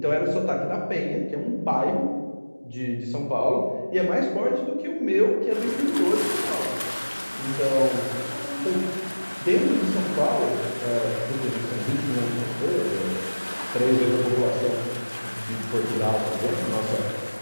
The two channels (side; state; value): both; inverted; correlation -1.00